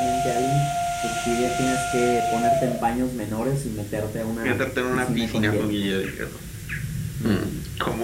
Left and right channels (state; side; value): identical; both; correlation 1.00